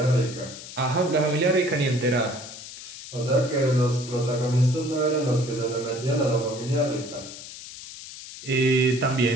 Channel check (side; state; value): left; noise; hiss, 13 dB below the sound